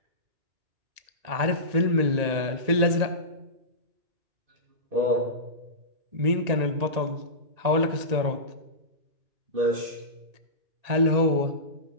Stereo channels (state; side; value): late; left; 1.9 ms